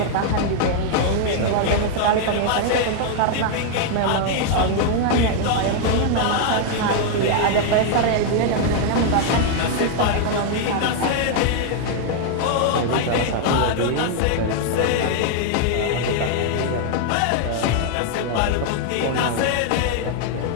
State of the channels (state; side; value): different; both; correlation 0.00